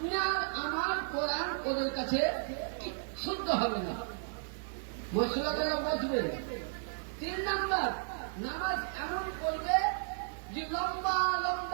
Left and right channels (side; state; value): left; silent; 55 dB below the other